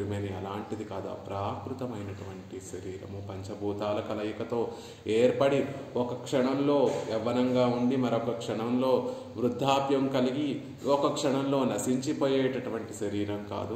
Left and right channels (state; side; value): identical; both; correlation 1.00